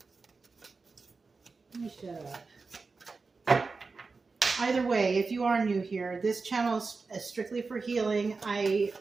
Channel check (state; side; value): quieter; left; 4.3 dB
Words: Let me shut up. Either way, if you are new here, this channel is strictly for healing. I